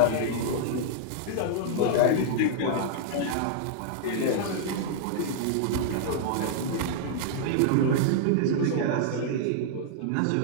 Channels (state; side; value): different; both; correlation -0.01